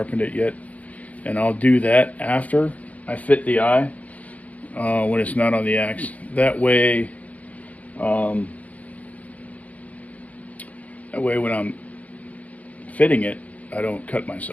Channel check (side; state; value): right; late; 0.071 ms